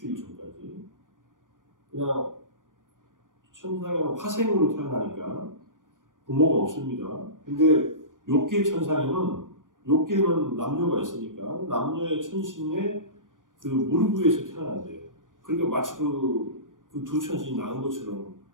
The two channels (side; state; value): left; late; 0.88 ms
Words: 전까지. 그냥 천상에는 화생으로 태어나니까 부모가 없습니다. 근데 욕계 천상에는 욕계는 남녀가 있으니까 남녀의 천신의 그 무릎 위에서 태어난대요. 그러니까 마치 그 두 천신이 낳은 것처럼